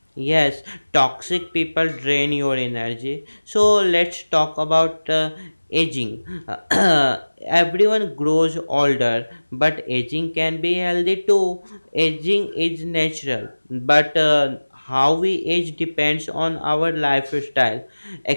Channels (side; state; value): both; inverted; correlation -1.00